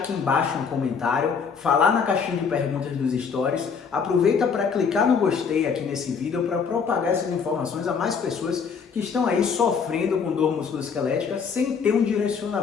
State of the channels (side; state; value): right; quieter; 6.0 dB